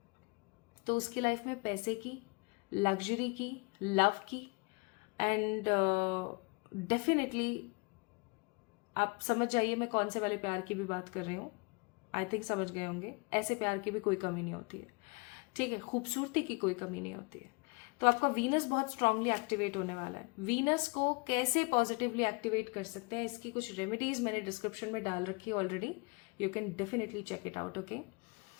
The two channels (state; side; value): quieter; right; 30.0 dB